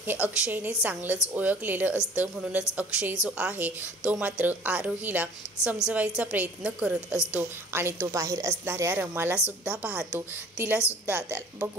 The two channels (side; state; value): both; normal; correlation 0.48